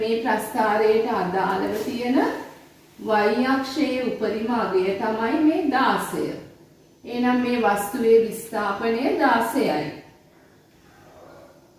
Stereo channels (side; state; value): both; identical; correlation 1.00